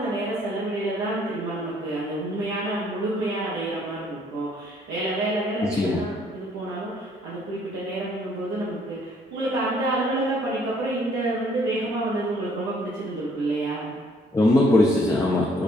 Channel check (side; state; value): both; normal; correlation 0.63